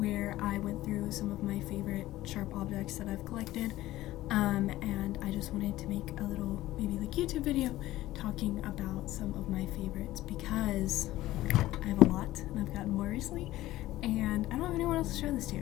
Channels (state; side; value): quieter; right; 15.9 dB